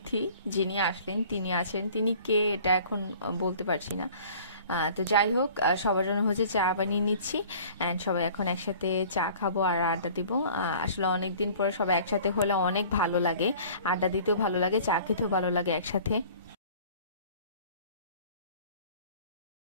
যিনি আসলেন তিনি আছেন, তিনি কে এটা এখন বলতে পারছি না। তো যাই হোক, সবার জন্য হচ্ছে চা বানিয়ে নিচ্ছি, অ্যান্ড সবাই এখন একসাথে চা খাবো আর আড্ডা দিব। আসলে অনেক দিন পরে সবাই একসাথে হলে অনেক ভালো লাগে, আড্ডা দিতেও ভালো লাগে, চা খেতেও ভালো লাগে একসাথে।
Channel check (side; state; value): both; inverted; correlation -0.48